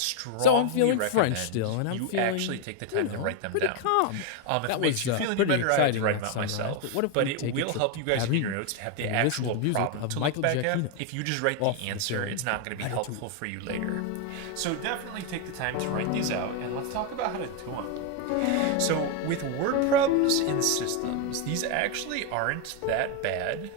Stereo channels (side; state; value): both; different; correlation 0.01